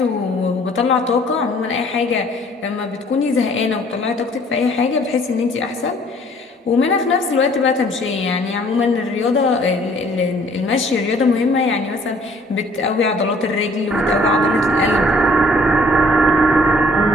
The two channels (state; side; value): normal; both; correlation 0.58